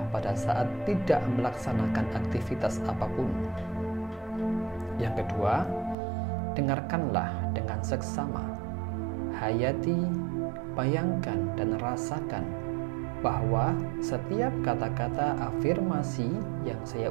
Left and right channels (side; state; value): left; drops out; at 6.0 s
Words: pada saat tidak melaksanakan aktivitas apapun. Yang kedua, dengarkanlah dengan seksama. Hayati, bayangkan dan rasakan bahwa setiap kata-kata afirmasi yang saya